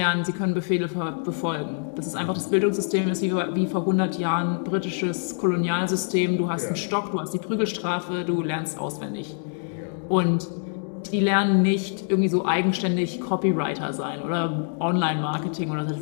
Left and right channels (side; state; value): right; silent; 61 dB below the other